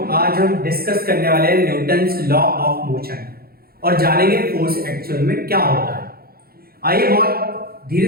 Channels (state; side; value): late; left; 0.44 ms